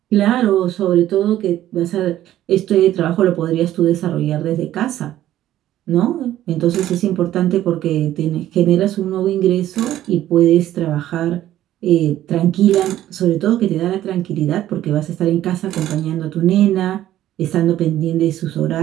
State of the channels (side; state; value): left; quieter; 13.0 dB